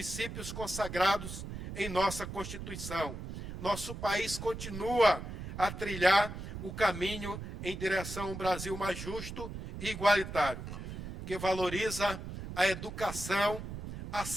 consagrados em nossa Constituição. Nosso país continua a trilhar o caminho em direção a um Brasil mais justo e igualitário, que valoriza a educação, a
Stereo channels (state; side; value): noise; right; rumble, 8 dB below the sound